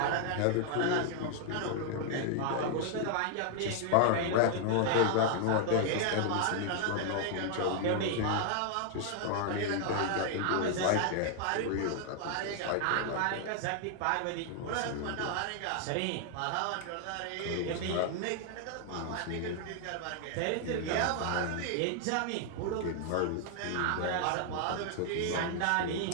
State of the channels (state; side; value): different; both; correlation 0.00